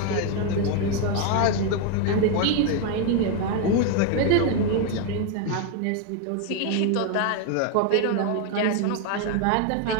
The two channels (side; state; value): both; different; correlation 0.01